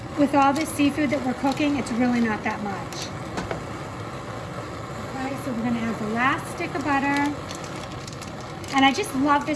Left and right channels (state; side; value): identical; both; correlation 1.00